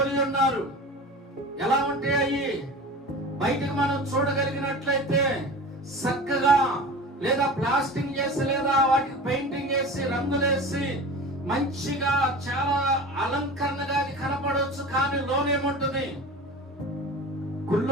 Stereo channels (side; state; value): both; normal; correlation 0.34